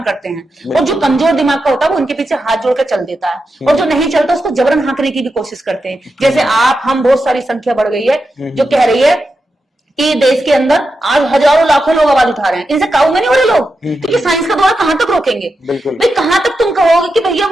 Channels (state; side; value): normal; both; correlation 0.88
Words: करते हैं, और जो कमजोर दिमाग का होता है वो उनके पीछे हाथ जोड़ के चल देता है, और जो नहीं चलता उसको जबरन हाँकने की भी कोशिश करते हैं। जैसे हम बहुत सारी संख्या बढ़ गई है जो कह रही है कि देश के अंदर आज हजारों लाखों लोग आवाज उठा रहे हैं, इनसे काबू में नहीं हो रहे लोग, क्योंकि साइंस का दौरा कहां तक रोकेंगे? भाई कहां तक तुम कहोगे कि भैया